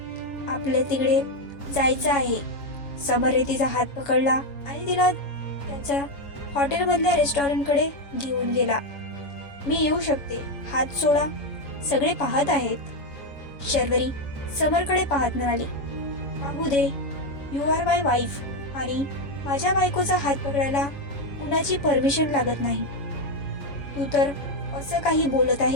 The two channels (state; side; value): late; right; 7.1 ms